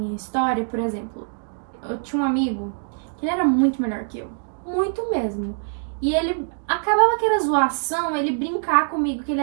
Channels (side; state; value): left; silent; digital silence